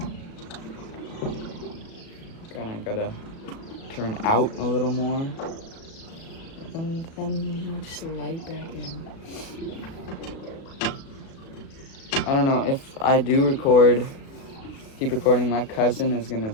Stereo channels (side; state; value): right; late; 36 ms